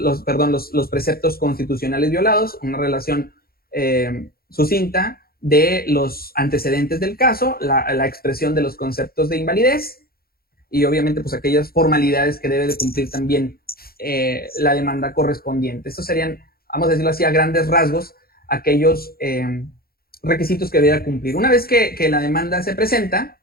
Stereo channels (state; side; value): late; right; 0.44 ms